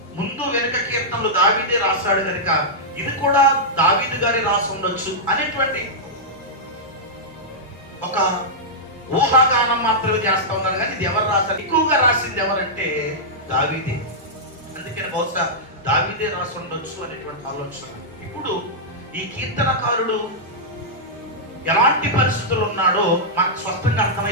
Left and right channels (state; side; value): normal; both; correlation -0.10